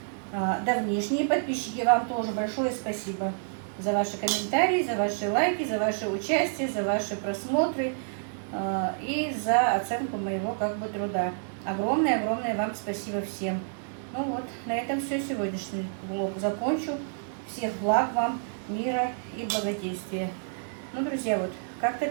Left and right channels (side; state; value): left; silent; digital silence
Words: давнишние подписчики, вам тоже большое спасибо за ваши комментарии, за ваши лайки, за ваше участие, за ваши просмотры и за оценку моего как бы труда. Огромное вам спасибо всем. Ну вот, на этом все, сегодняшний влог закончу. Всех благ вам, мира и благодействия. Ну, друзья, вот как-то